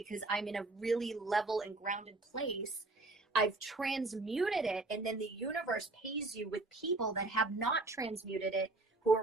I'm in a really level and grounded place. I've transmuted it, and then the universe pays you with people that have not transmuted it, who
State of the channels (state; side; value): quieter; left; 3.0 dB